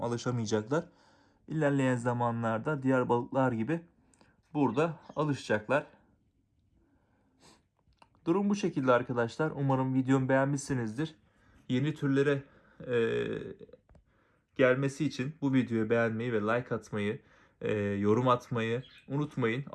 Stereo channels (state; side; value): identical; both; correlation 1.00